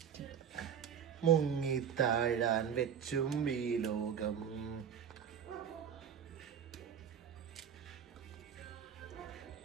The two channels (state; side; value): quieter; left; 8.1 dB